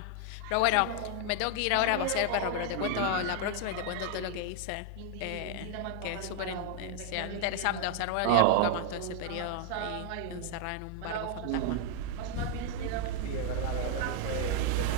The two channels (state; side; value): different; both; correlation 0.00